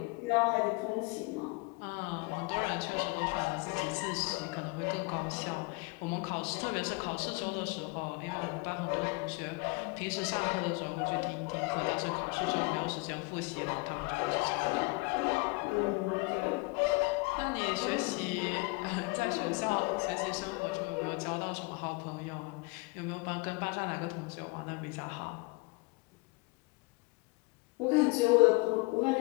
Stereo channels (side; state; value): right; quieter; 26.8 dB